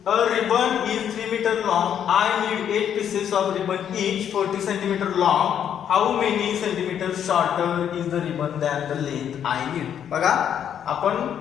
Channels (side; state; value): right; quieter; 9.1 dB